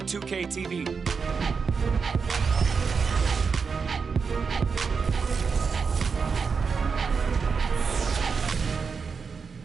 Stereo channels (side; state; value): left; quieter; 5.5 dB